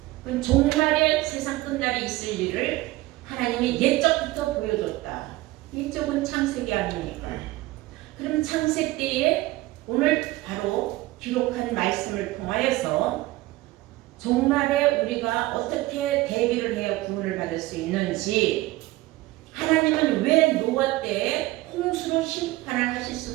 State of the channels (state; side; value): quieter; left; 18.4 dB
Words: 그럼 종말에 세상 끝날에 있을 일을 하나님이 옛적부터 보여줬다. 옛적은 창세기 아닙니까? 그럼 창세 때에 오늘 바로 기록한 말씀을 통하여서 종말에 우리가 어떻게 대비를 해야 구원을 받을 수 있는지 하나님은 왜 노아 때에 홍수로 심판을 하실